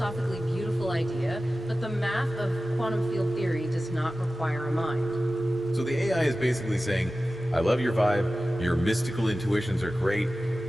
beautiful idea, but the math of quantum field theory does not require a mind. So the AI is basically saying, I love your vibe, your mystical intuitions are great,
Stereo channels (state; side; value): normal; both; correlation 0.95